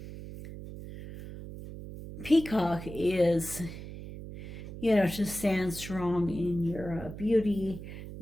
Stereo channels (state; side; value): noise; right; hum, 11 dB below the sound